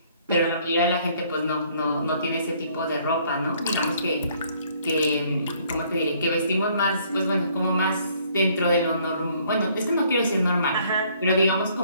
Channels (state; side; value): inverted; both; correlation -0.63